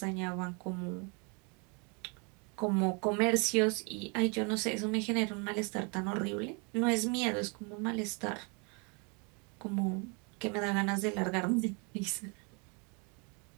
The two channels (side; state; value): left; quieter; 33.8 dB